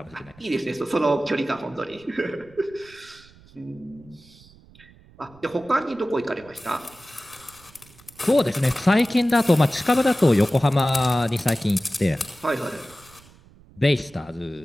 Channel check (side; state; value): right; noise; rumble, 26 dB below the sound